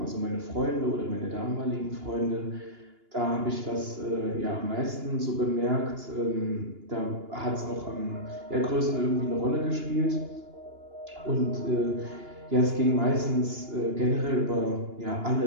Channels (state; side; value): late; left; 2.9 ms